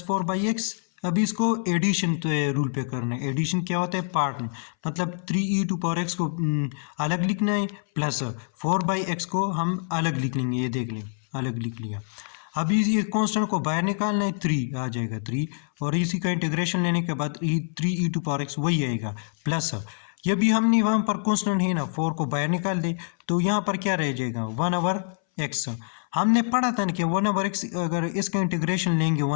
4/x। अभी इसको एडिशन रूल पे करना है। एडिशन क्या होता है, पार्ट में, मतलब 3e⁻x को अलग लिखना है, प्लस 4/x को हम अलग लिख लेंगे, ये देख लें, अलग लिख लिया। अभी ये कांस्टेंट को बाहर निकालना है, 3 आ जाएगा 3, और इसी का इंटीग्रेशन लेने के बाद 3e⁻x वही आएगा, प्लस ये भी हमने वहाँ पर कांस्टेंट है ना, 4 को बाहर निकाल दे, तो यहाँ पर क्या रह जाएगा, 1/x। हमने पढ़ा था ना कि 1/x, अगर इसका इंटीग्रेशन लेंगे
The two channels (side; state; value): right; silent; 61 dB below the other